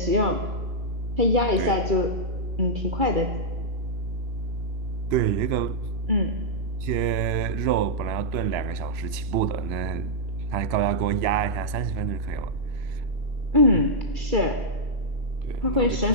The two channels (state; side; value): late; left; 3.0 ms